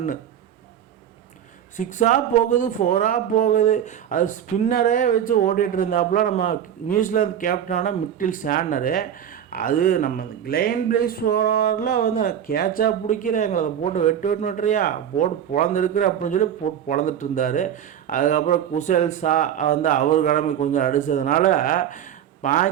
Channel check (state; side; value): quieter; left; 9.6 dB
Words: 6ஆக போகுது, 4ஆக போகுது. அது ஸ்பின்னரே வச்சு ஓடிட்டு இருந்தாப்புல நம்ம நியூசிலாந்து கேப்டனான மிட்டில் சாண்டரு. அது நம்ம கிளைன் பிளேஸ் ஓவரில் வந்து கேட்சாக பிடிக்கிற எங்களை போட்டு வெட்டுறியா போட்டு பொழந்துருக்குற அப்படின்னு சொல்லி போட்டு பொழந்துட்டு இருந்தார். அதுக்கப்புறம் குசேல் ஷா வந்து அவர் கிளம்பி கொஞ்சம் அடித்ததுனால